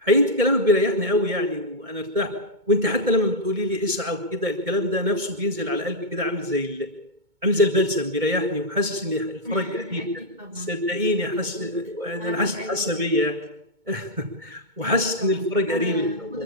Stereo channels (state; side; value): late; left; 2.2 ms